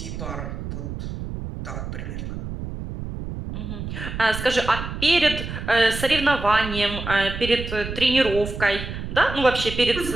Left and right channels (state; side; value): noise; right; rumble, 7 dB below the sound